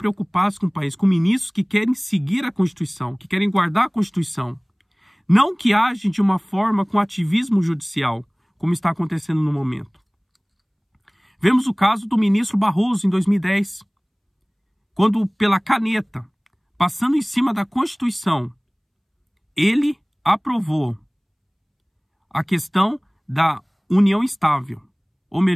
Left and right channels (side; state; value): both; identical; correlation 1.00